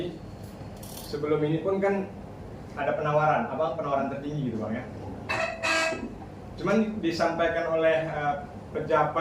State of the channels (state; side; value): identical; both; correlation 1.00